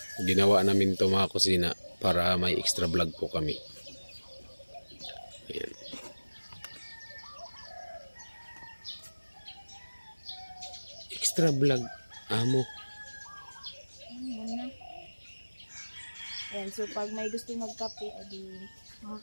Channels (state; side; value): inverted; both; correlation -1.00